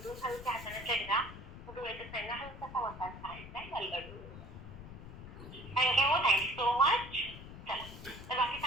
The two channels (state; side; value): noise; left; rumble, 13 dB below the sound